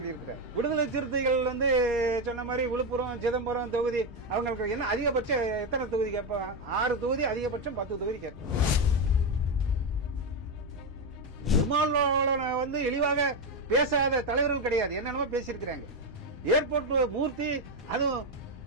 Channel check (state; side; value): normal; both; correlation 0.09